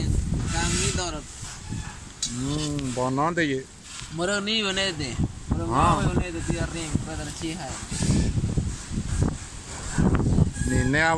kang ni dorot. Bonante ye. Moro ni bonete. Moro bonete tía ring para chija. Ni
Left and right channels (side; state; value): both; identical; correlation 1.00